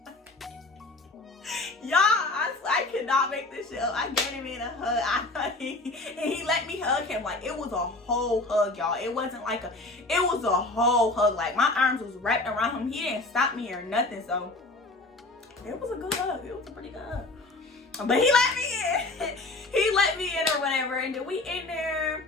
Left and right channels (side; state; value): right; quieter; 3.0 dB